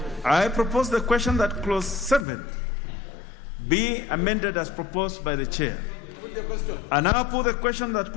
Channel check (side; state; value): right; drops out; at 2.2 s